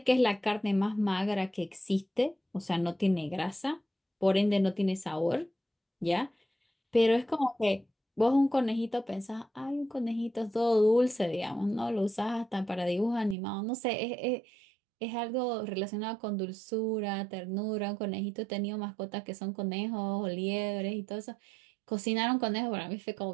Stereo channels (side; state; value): left; drops out; at 13.4 s